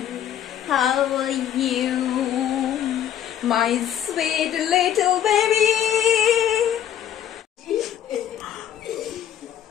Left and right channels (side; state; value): right; quieter; 10.3 dB